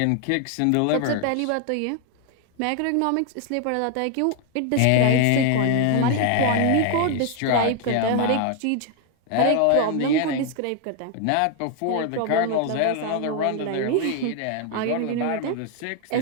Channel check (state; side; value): different; both; correlation 0.00